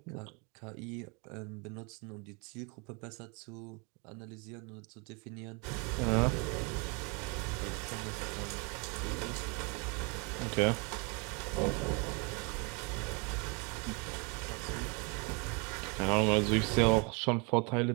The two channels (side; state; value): left; quieter; 32.4 dB